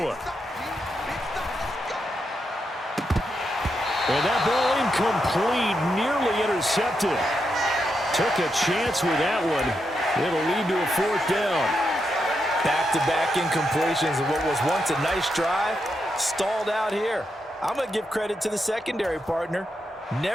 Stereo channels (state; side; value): normal; both; correlation 0.84